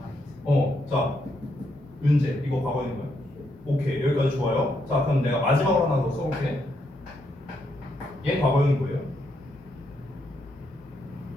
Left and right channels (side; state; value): both; normal; correlation 0.77